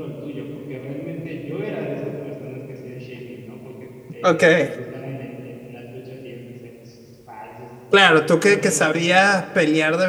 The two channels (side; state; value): both; identical; correlation 1.00